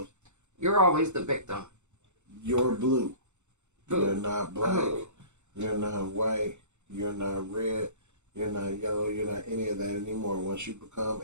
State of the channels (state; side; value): late; left; 0.83 ms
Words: you're always the victim. You're blue. Blue. You're not black. You're not white. You're not red. You're not yellow. You're not any of that anymore. Once you become